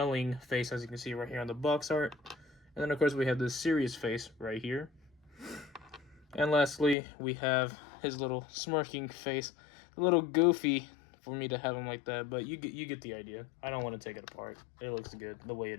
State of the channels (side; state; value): right; drops out; at 7.0 s